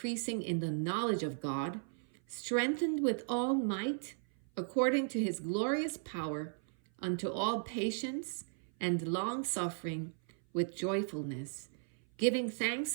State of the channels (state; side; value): silent; left; 54 dB below the other